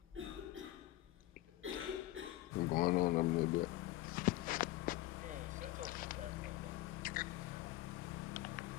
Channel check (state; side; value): quieter; right; 16.8 dB